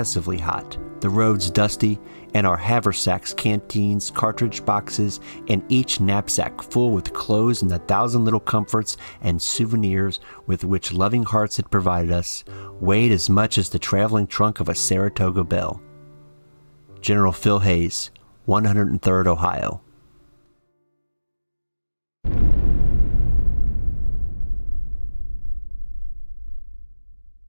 hot, the roads dusty, and our haversacks, canteens, cartridge boxes, and each knapsack full with clothes and the 1,000 little comforts and souvenirs with which loving hearts had provided us, weighed as much as the traveling trunk of a Saratoga Belle. General Phil Hayes, 103rd Ohio.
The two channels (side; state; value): both; inverted; correlation -1.00